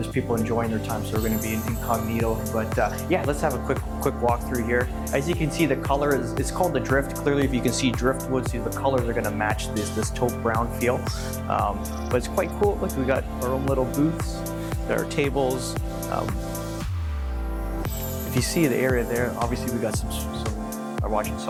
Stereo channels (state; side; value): identical; both; correlation 1.00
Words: people enjoying their time, so we're gonna be incognito. But yeah, let's have a quick walkthrough here. As you can see, the color it's called the Drift. Clearly, if you can see driftwood, see the colors are gonna match this taupe brown feel. But it's quite cool. Look, we got our own little booths. There are tables. If you see the area there, obviously we got some are watching